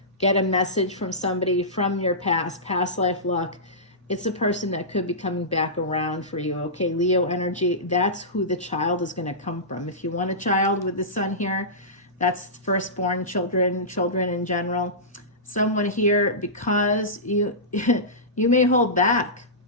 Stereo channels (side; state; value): both; normal; correlation -0.18